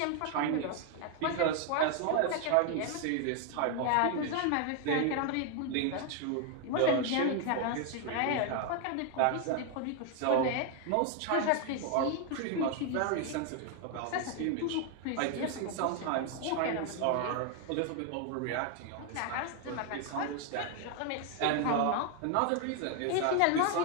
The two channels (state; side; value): different; both; correlation 0.00